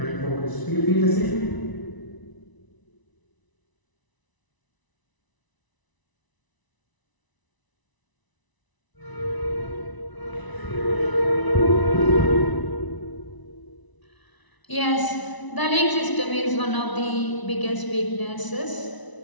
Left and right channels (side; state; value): right; late; 1.0 ms